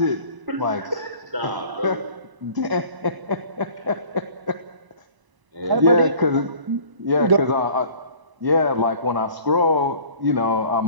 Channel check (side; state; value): left; late; 1.0 ms